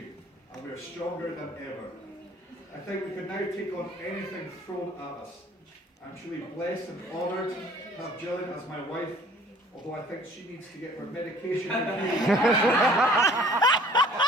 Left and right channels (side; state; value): both; normal; correlation 0.52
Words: and we are stronger than ever. I think we can now take on anything thrown at us. I'm truly blessed and honoured to have Gillian as my wife, although I think she needs to get her medication reviewed.